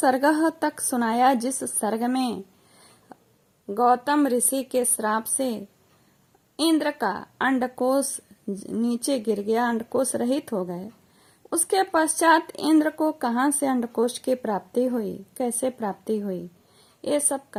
तक सुनाया, जिस सर्ग में गौतम ऋषि के श्राप से इंद्र का अंडकोश नीचे गिर गया, अंडकोश रहित हो गए। उसके पश्चात इंद्र को कहां से अंडकोश की प्राप्ति हुई, कैसे प्राप्ति हुई, ये सब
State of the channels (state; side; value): identical; both; correlation 1.00